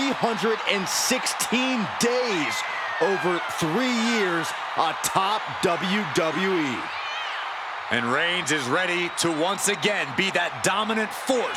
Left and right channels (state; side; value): identical; both; correlation 1.00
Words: days over 3 years atop WWE. And Reigns is ready to once again be that dominant